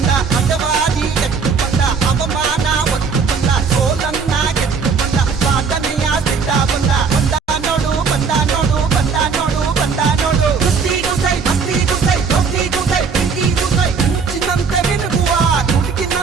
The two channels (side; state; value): left; quieter; 5.4 dB